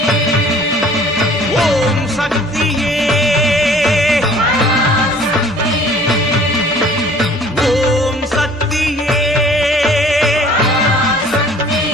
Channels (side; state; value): left; noise; hum, 28 dB below the sound